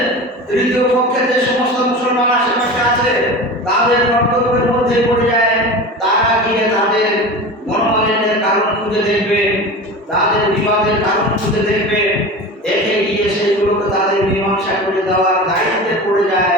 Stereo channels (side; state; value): both; normal; correlation 0.31